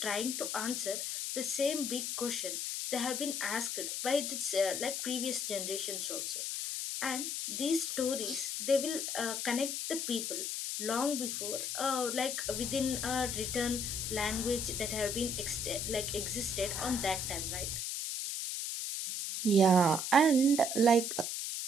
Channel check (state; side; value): noise; left; hiss, 2 dB below the sound